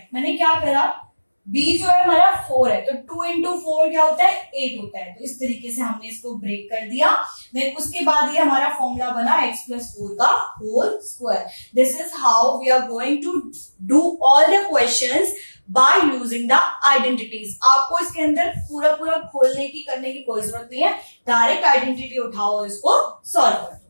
मैंने क्या करा, b जो है हमारा 4 है, तो 2 इंटू 4 क्या होता है? 8 होता है। तो इस तरीके से हमने इसको ब्रेक कर दिया। देन उसके बाद ये हमारा फॉर्मूला बना x प्लस 4 का whole square. This is how we are going to do all the questions by using the identities. आपको इसके अंदर पूरा पूरा खोलने की करने की कोई जरूरत नहीं है, डायरेक्ट आइडेंटिटी उठाओ, इसको सॉल्व कर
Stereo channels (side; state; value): both; inverted; correlation -1.00